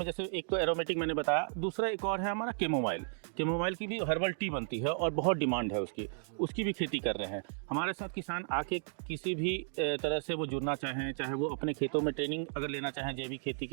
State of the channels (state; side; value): silent; left; digital silence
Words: जैसे एक तो एरोमेटिक मैंने बताया, दूसरा एक और है हमारा कैमोमाइल। कैमोमाइल की भी हर्बल टी बनती है और बहुत डिमांड है उसकी भी खेती कर रहे हैं। हमारे साथ किसान आके किसी भी तरह से वो जुड़ना चाहें, चाहे वो अपने खेतों में ट्रेनिंग अगर लेना चाहें जैविक खेती